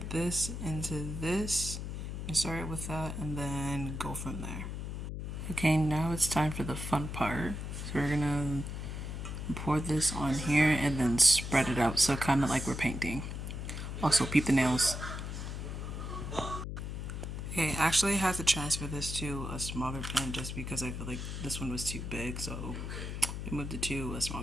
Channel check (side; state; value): left; noise; hum, 5 dB below the sound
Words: this into this. And start with that and then go from there. Okay, now it's time for the fun part. So we're going to pour this on here and then spread it out, so kind of like we're painting. Also, peep the nails. Okay, actually I had to transfer this to a smaller pan just because I feel like this one was too big, so we moved it to a